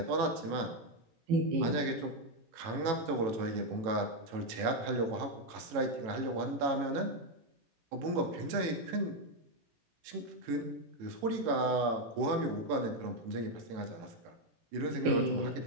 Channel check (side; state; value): left; late; 18 ms